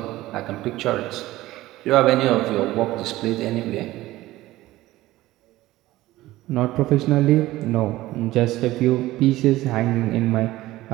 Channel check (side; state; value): left; quieter; 16.9 dB